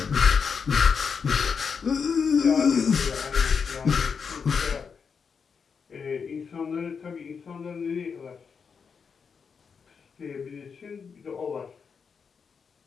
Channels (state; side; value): quieter; right; 6.0 dB